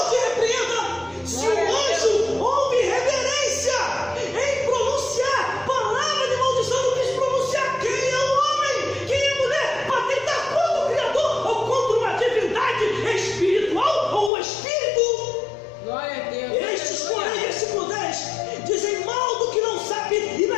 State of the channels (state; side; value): drops out; right; at 14.3 s